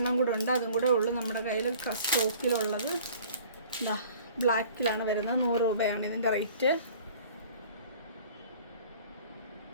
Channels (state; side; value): inverted; both; correlation -0.49